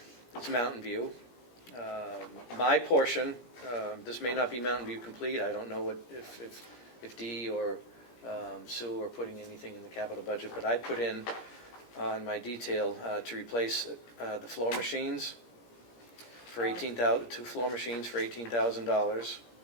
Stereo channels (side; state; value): right; late; 17 ms